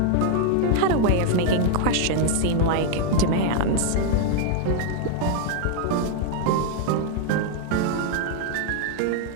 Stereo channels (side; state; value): both; different; correlation 0.00